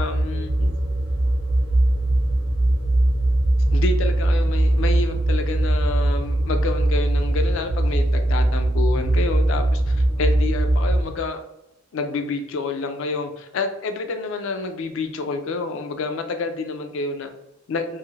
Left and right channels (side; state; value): both; normal; correlation 0.81